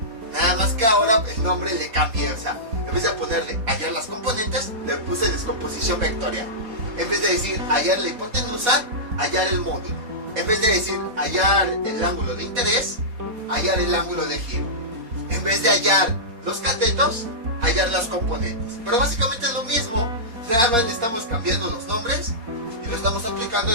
nada más que ahora el nombre le cambié. O sea, en vez de ponerle hallar las componentes, le puse descomposición vectorial. En vez de decir hallar la hipotenusa, hallar el módulo. En vez de decir hallar el ángulo de interés, hallar el ángulo de giro. En vez de hallar los catetos, hallar las componentes. Pero básicamente es lo mismo, nada más le estamos cambiando los nombres y lo estamos aplicando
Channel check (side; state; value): left; late; 4.3 ms